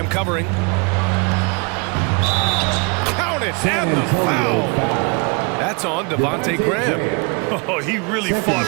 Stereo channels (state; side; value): quieter; left; 31.6 dB